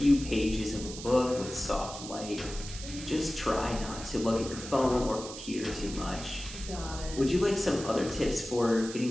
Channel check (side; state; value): right; noise; hiss, 11 dB below the sound